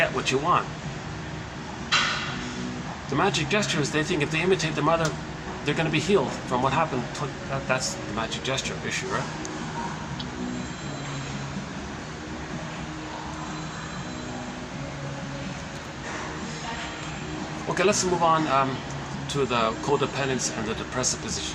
what you want. The magic gesture is they think if they imitate the mother, they're going to be healed from what happened. That's the magic gesture issue, right? Okay, let's move on to the codependence and the depressive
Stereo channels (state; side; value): identical; both; correlation 1.00